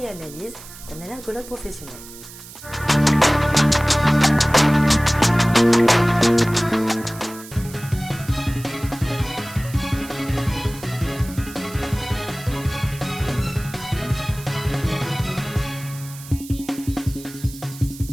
analyses d'un allergologue professionnel.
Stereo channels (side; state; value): right; noise; hiss, 16 dB below the sound